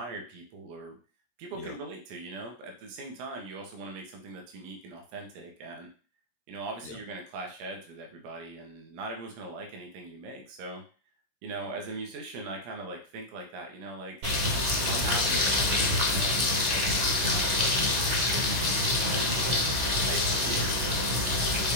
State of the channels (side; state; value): left; late; 16 ms